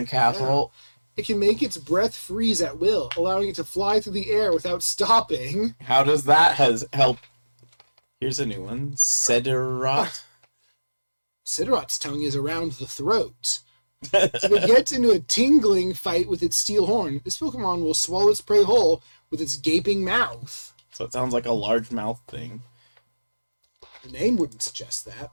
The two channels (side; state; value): both; inverted; correlation -1.00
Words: castle. It can make its breath freeze at will, allowing it to fly through the air without stopping. How does that help? Here's a new one. Cedorot. Sidorot's tongue is around the throat. If it gets into a tingling fight with its steel horn, this Pokemon will swallow its prey whole with its gaping mouth. So it sounds like a large mouth thing. The name wouldn't suggest that,